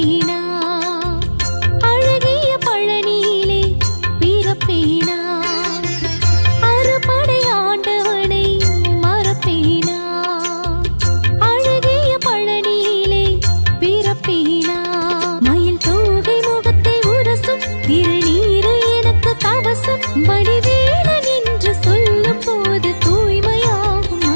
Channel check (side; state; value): both; inverted; correlation -1.00